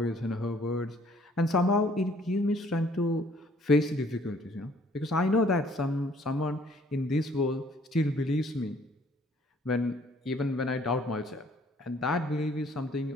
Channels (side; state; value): both; normal; correlation 0.60